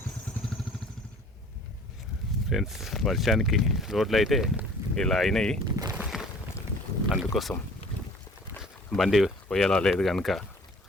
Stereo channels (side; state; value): both; normal; correlation 0.50